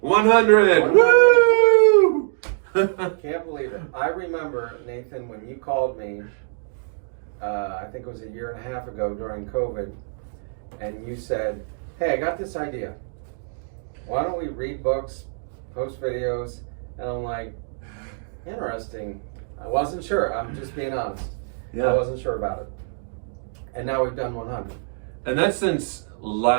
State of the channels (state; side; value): silent; left; digital silence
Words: Woo! Can't believe it. I remember, Nathan, when you called me, I think it was a year and a half ago during COVID, and you said, hey, I got this idea. Why don't we read books, post videos? And I'm like, interesting. I wasn't sure. I'm just being honest. Yeah. I wasn't sure about it. And now we've done 100. And that's since